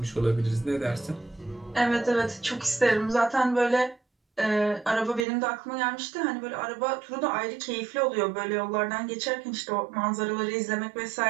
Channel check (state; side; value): drops out; left; at 5.2 s